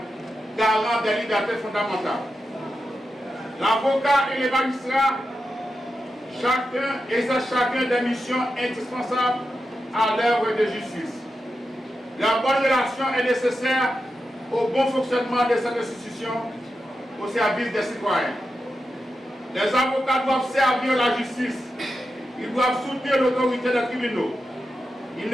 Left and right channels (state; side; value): normal; both; correlation 0.89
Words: garant des libertés fondamentales. L'avocat et les magistrats, chacun exerce des missions indispensables à l'œuvre de justice. Leur bonne relation est nécessaire au bon fonctionnement de cette institution au service des citoyens. Les avocats doivent servir la justice. Ils doivent soutenir l'autorité des tribunaux. Ils